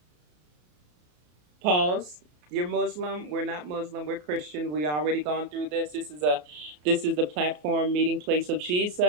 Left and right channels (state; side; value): late; left; 33 ms